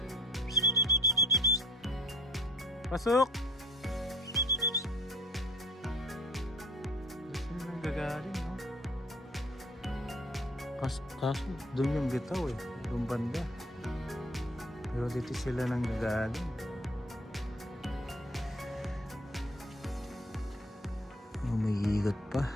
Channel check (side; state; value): both; normal; correlation 0.52